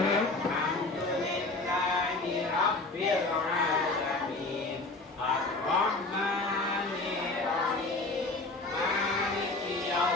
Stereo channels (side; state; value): right; quieter; 3.2 dB